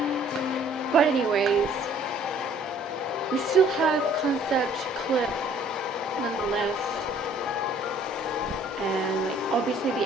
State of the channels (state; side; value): normal; both; correlation 0.57